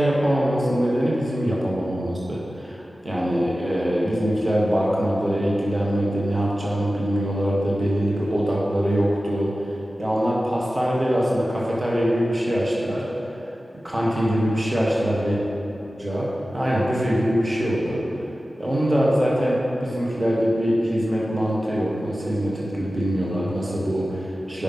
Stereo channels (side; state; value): both; normal; correlation 0.95